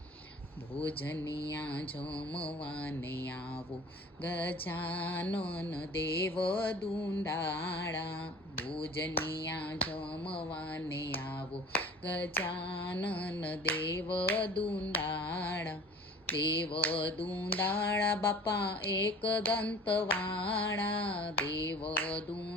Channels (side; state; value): both; normal; correlation 0.44